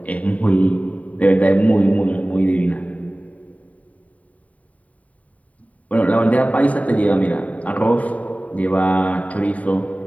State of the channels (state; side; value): late; right; 0.069 ms